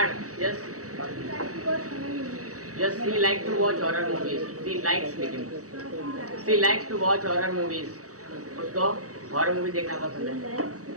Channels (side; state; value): left; late; 0.66 ms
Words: yes yes. She like to watch horror movies, she likes, लेकिन she likes to watch horror movies, उसको हॉरर मूवी देखना पसंद है,